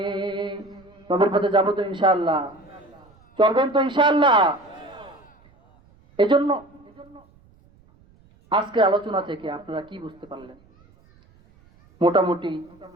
নবীর পথে যাবো তো ইনশাআল্লাহ, চলবেন তো ইনশাআল্লাহ। এজন্য আজকে আলোচনা থেকে আপনারা কি বুঝতে পারলেন? মোটামুটি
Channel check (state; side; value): noise; right; rumble, 29 dB below the sound